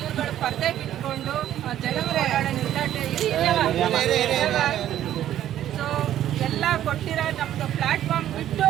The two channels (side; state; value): left; quieter; 11.9 dB